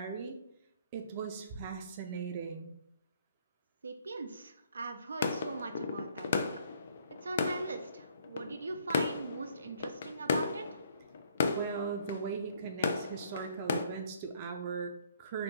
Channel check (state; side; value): inverted; both; correlation -0.63